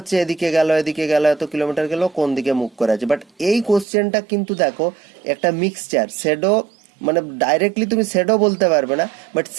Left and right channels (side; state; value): left; drops out; at 3.9 s